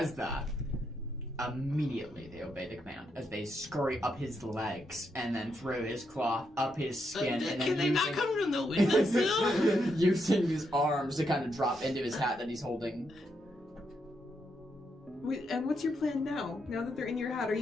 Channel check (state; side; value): normal; both; correlation 0.80